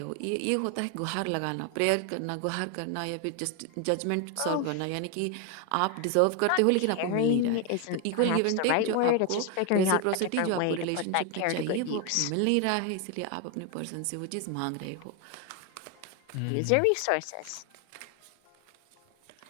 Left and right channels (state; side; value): different; both; correlation 0.01